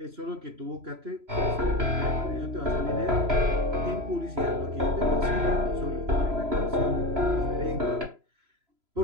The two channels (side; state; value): left; late; 3.0 ms